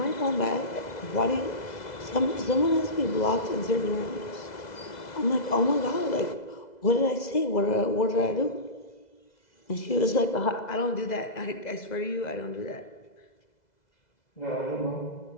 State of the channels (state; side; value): late; right; 2.0 ms